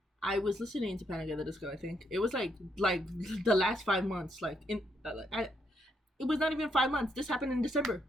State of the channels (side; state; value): both; normal; correlation 0.76